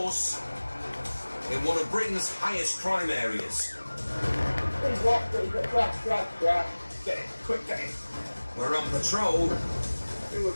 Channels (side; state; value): both; inverted; correlation -1.00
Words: in one of Britain's highest crime areas. Get it, quick, get it. We're on patrol Who will